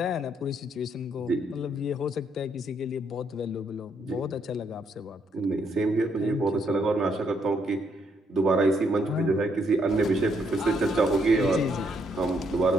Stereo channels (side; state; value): both; normal; correlation 0.73